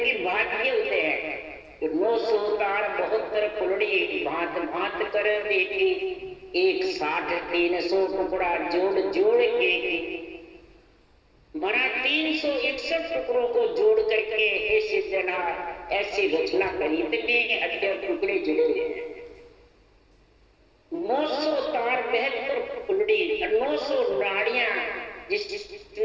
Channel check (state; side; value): identical; both; correlation 1.00